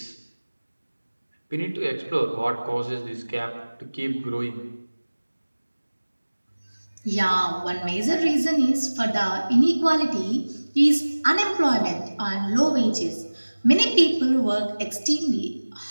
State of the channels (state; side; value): inverted; both; correlation -1.00